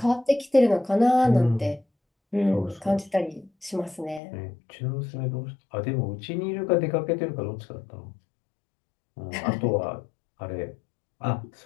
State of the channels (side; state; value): right; drops out; at 4.2 s